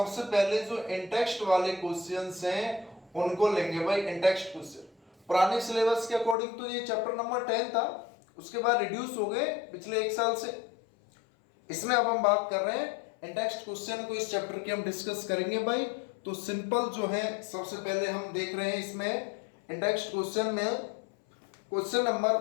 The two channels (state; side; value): drops out; right; at 6.4 s